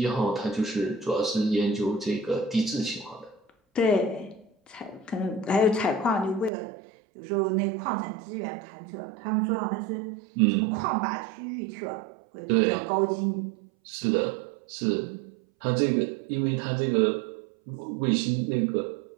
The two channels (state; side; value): drops out; left; at 6.5 s